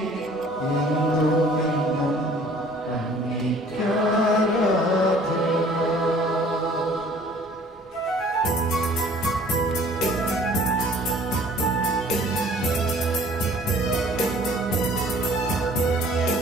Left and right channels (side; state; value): both; normal; correlation 0.53